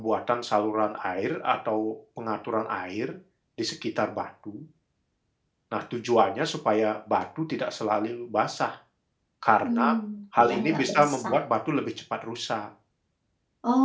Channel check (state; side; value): identical; both; correlation 1.00